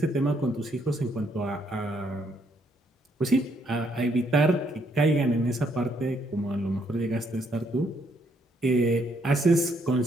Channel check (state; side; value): normal; both; correlation 0.71